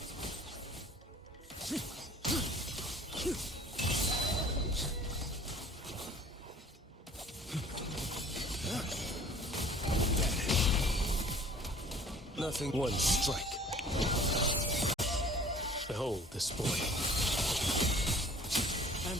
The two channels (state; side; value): normal; both; correlation 0.49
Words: Nothing. One strike. Behold this blade.